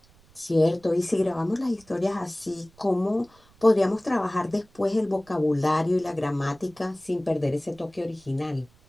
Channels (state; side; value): noise; right; rumble, 29 dB below the sound